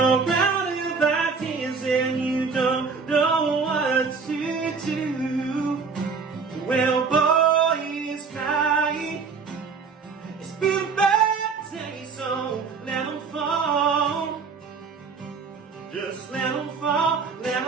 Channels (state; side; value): quieter; left; 5.1 dB